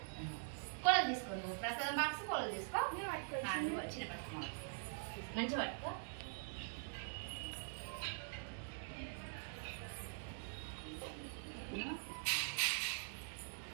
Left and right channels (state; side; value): silent; left; digital silence